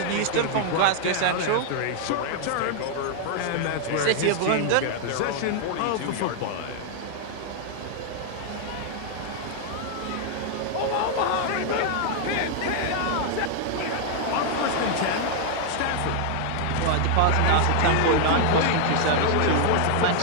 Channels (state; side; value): different; both; correlation 0.00